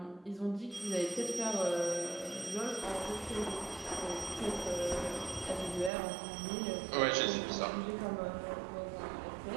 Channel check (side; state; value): left; drops out; at 5.9 s